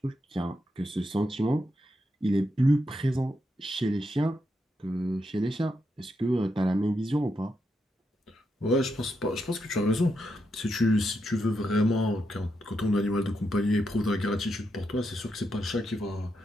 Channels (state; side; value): normal; both; correlation 0.83